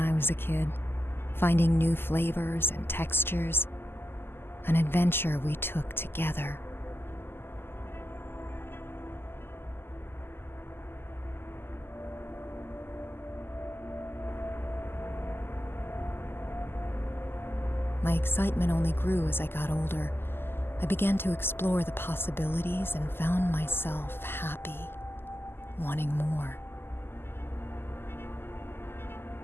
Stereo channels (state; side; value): late; right; 0.11 ms